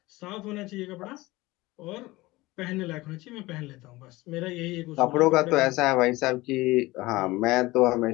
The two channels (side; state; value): right; quieter; 20.2 dB